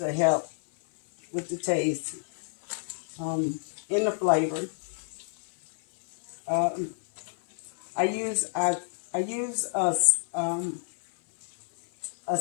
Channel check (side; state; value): right; silent; 59 dB below the other